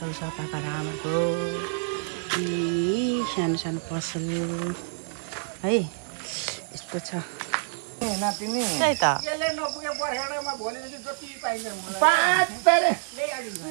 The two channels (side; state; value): left; silent; digital silence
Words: छ पापा र आमाको। सानो सानो पसल है, यस्तो छ। त्यही त